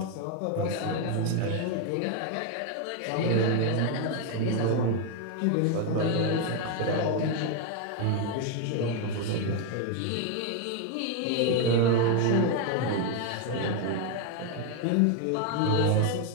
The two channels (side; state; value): both; different; correlation 0.01